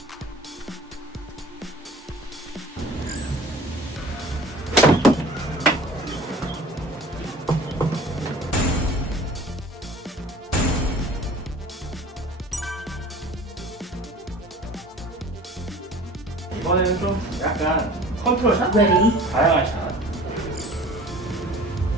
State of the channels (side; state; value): both; normal; correlation 0.44